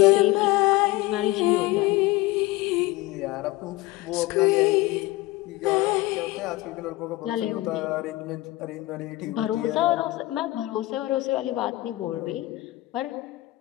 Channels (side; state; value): right; quieter; 18.6 dB